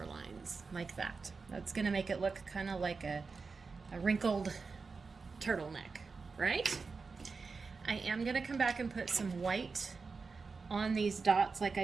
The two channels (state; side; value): quieter; left; 4.6 dB